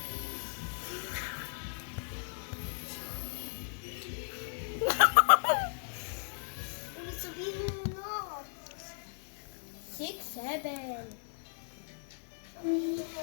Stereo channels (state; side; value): silent; right; digital silence